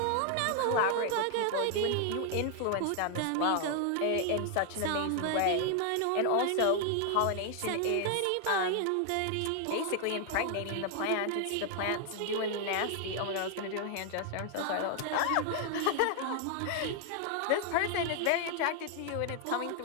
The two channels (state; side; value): different; both; correlation 0.00